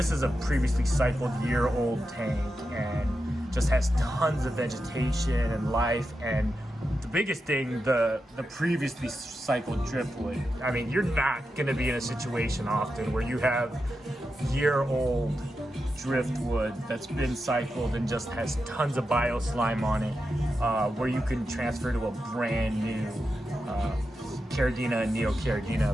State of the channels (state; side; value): normal; both; correlation 0.89